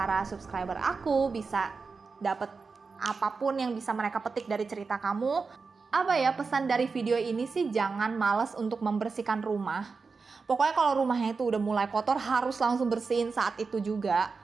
subscriber aku, bisa dapet apapun yang bisa mereka petik dari cerita kamu. Apa ya, pesan dari video ini sih, jangan males untuk membersihkan rumah. Pokoknya kalau rumahnya itu udah mulai kotor, harus langsung bersihin saat itu juga.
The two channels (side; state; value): left; quieter; 4.6 dB